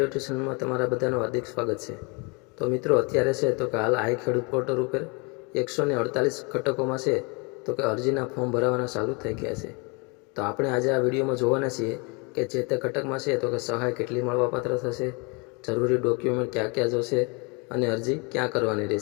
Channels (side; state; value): right; quieter; 30.8 dB